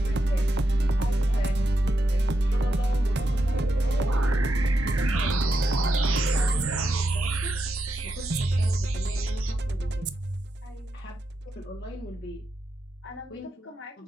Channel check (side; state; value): both; normal; correlation 0.85